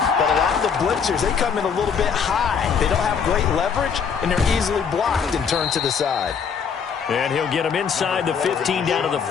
But a lot of the blitzers, they come in a little bit high. They don't have great leverage, and they're easily blocked and turned to the side. And he'll get him inside the 15 down to the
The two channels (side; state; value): right; quieter; 6.6 dB